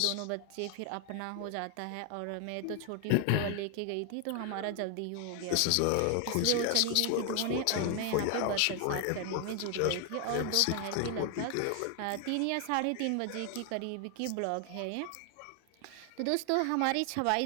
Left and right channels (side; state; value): both; different; correlation 0.00